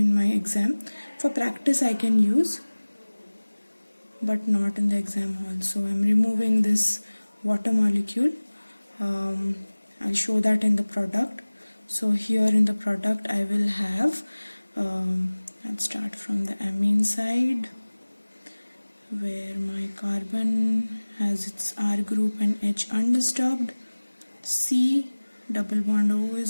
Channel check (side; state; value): both; inverted; correlation -1.00